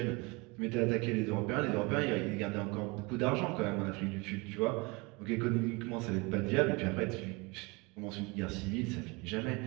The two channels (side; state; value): left; quieter; 26.9 dB